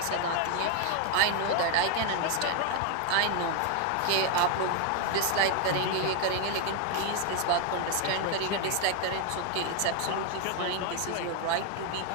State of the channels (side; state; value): both; different; correlation 0.01